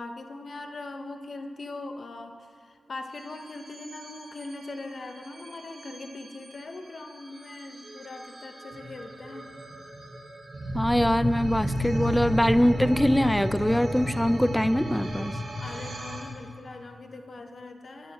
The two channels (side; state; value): both; normal; correlation 0.97